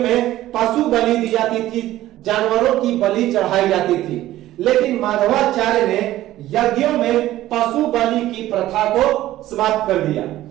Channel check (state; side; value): quieter; left; 14.7 dB